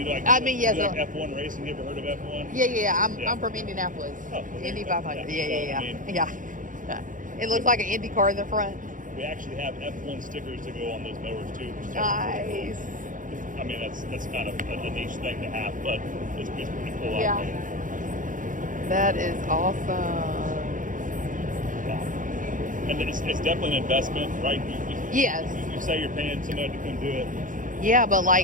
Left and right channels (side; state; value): left; late; 0.38 ms